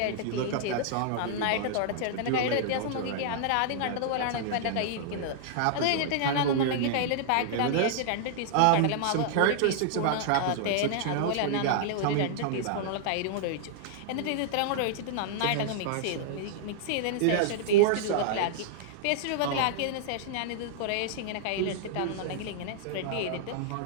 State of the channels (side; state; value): both; different; correlation -0.01